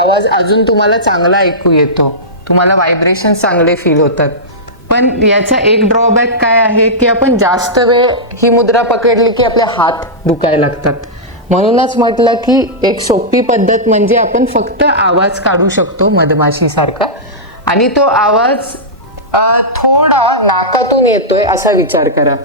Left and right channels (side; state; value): both; normal; correlation -0.13